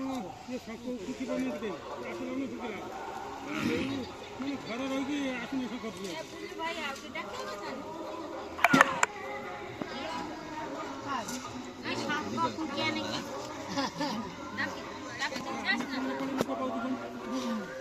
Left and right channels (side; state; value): both; identical; correlation 1.00